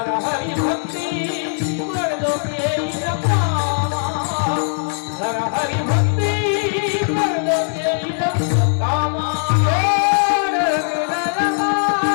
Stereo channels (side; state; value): right; silent; digital silence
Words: हरी भक्ती कर केली कामा. कर हरी भक्ती कर केली कामा.